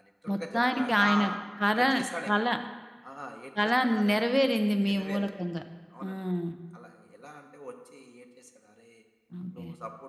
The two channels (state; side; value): identical; both; correlation 1.00